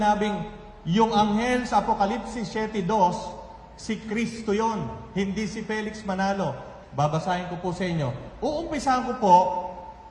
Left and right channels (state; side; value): identical; both; correlation 1.00